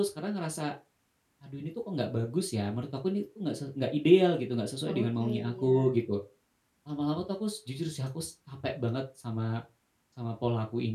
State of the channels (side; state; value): both; identical; correlation 1.00